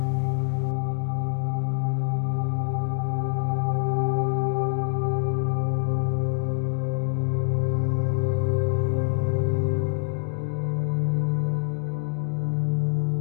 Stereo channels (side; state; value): right; silent; digital silence